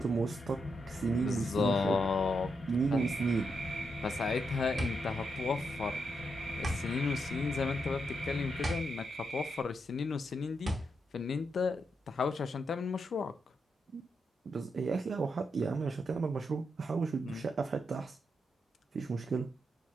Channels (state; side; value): normal; both; correlation 0.82